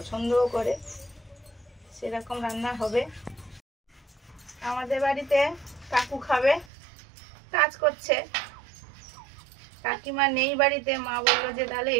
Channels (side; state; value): left; drops out; at 6.7 s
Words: করে, সেরকম রান্না হবে। আমাদের বাড়িতে কাকু খাবে, কাজ করছে, কাকিমা নেই বাড়িতে, মা বললো যে তাহলে